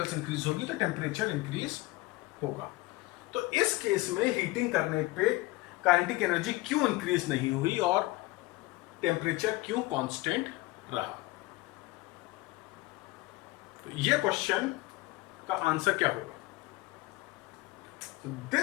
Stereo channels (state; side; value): quieter; right; 20.7 dB